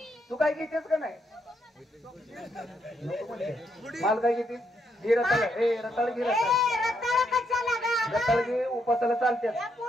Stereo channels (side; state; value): both; normal; correlation 0.77